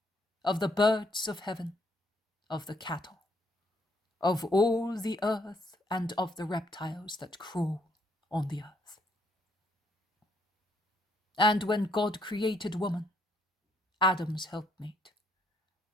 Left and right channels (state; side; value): normal; both; correlation 0.71